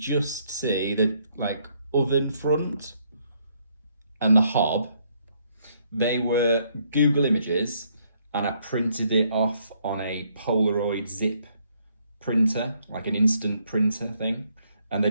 see the like oven front and the hob. They were Google images, and I printed it off on a Polaroid zip printer, like an instant printer thing, and they're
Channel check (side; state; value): both; inverted; correlation -0.70